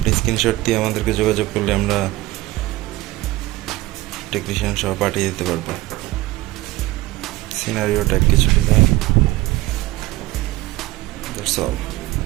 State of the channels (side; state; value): left; quieter; 18.2 dB